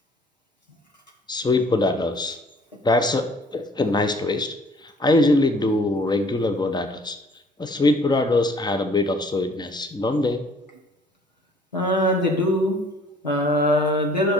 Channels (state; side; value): normal; both; correlation 0.56